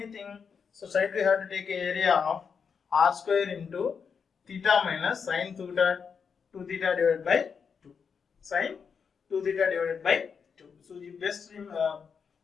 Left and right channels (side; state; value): right; quieter; 6.2 dB